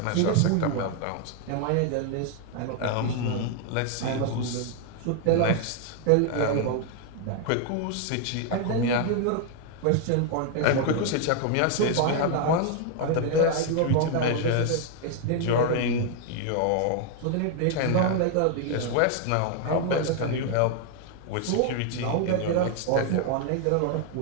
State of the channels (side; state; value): both; different; correlation 0.00